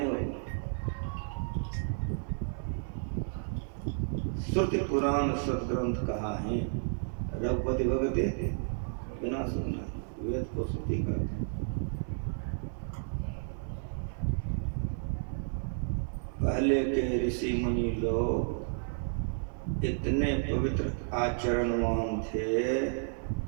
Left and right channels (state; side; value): silent; left; 56 dB below the other